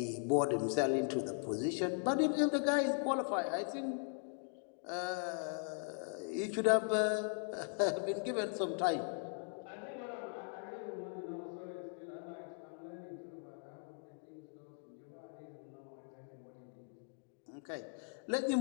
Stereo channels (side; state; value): right; silent; 51 dB below the other